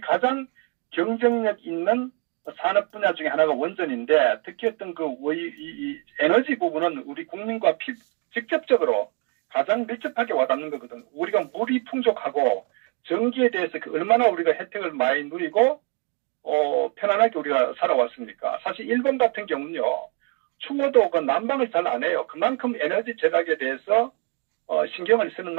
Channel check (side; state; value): left; quieter; 35.6 dB